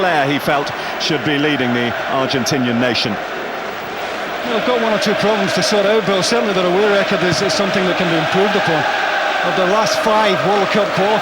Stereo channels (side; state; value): both; identical; correlation 1.00